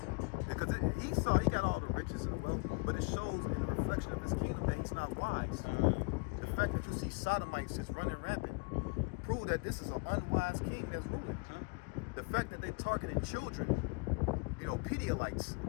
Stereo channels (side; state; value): right; quieter; 30.8 dB